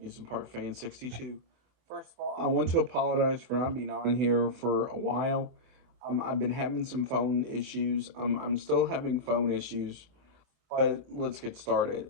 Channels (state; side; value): late; left; 24 ms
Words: Park Fan 62. First of all, I want to apologize for not being on here for a while. I've been having some phone issues. I'm still having phone issues, but let's get started.